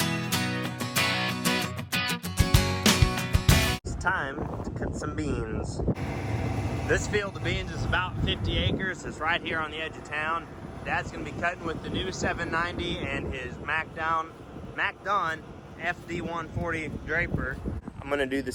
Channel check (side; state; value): both; identical; correlation 1.00